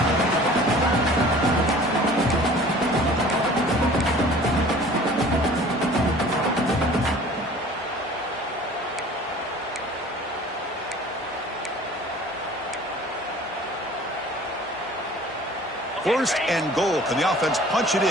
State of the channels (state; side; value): normal; both; correlation 0.47